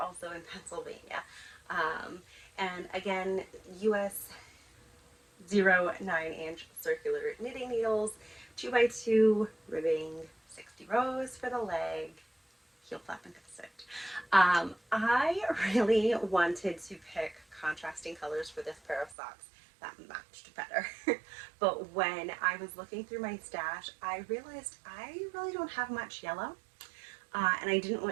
in Pennsylvania. And again, US 0 9-inch circular knitting needles, 2x2 ribbing, 60 rows for the leg, heel flap and gusset. I really wanted to pick contrasting colors for this pair of socks that matched better. But when I was looking through my stash, I realized I really don't have much yellow, and I didn't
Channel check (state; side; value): drops out; left; at 19.2 s